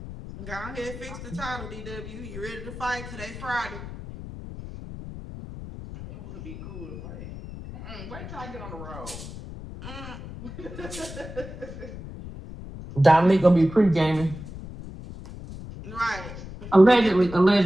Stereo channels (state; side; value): noise; left; rumble, 12 dB below the sound